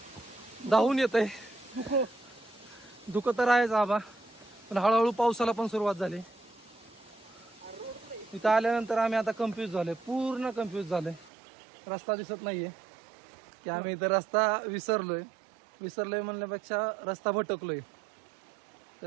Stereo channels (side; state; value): left; drops out; at 11.3 s